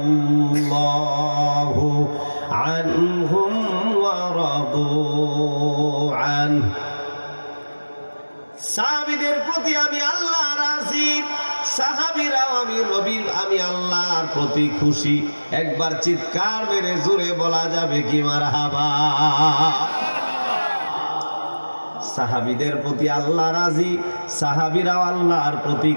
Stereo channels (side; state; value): both; inverted; correlation -1.00